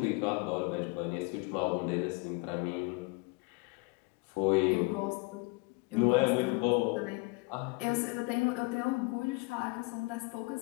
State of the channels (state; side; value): quieter; right; 28.0 dB